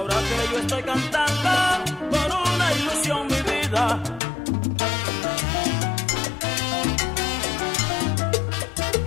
que yo estoy cantando por una ilusión mi vida.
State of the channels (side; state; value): right; drops out; at 4.2 s